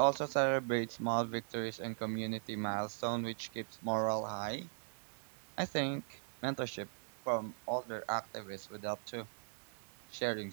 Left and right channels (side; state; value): left; silent; digital silence